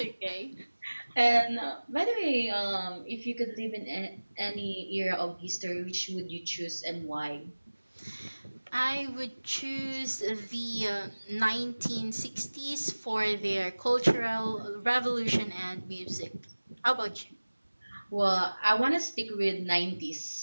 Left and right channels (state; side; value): inverted; both; correlation -1.00